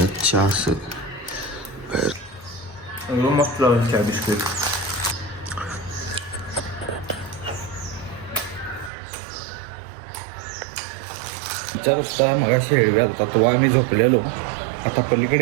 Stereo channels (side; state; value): left; drops out; at 8.9 s